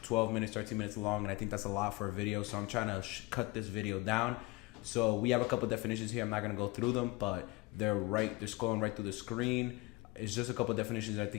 12 minutes, 13 minutes long, and I think that's a lot for a video, so I'm trying to cut this video down. So we have a couple definitions here. I'm not going to go through them, but they're scrolling right through the screen. It's just a couple definitions that I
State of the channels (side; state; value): right; quieter; 22.6 dB